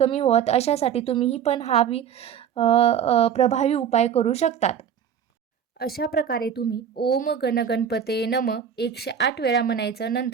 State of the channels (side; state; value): left; quieter; 8.3 dB